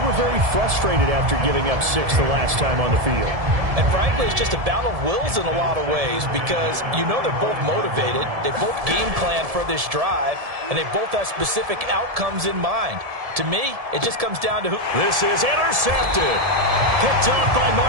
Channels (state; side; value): late; left; 1.7 ms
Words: very frustrated after giving up 6 the last time on the field. And frankly, it's just a battle of wills in a lot of ways because you know they're both motivated. They both game plan for this drive, and they both have specific outcomes in mind. To me, it just comes down to who. This is intercepted. Picked off by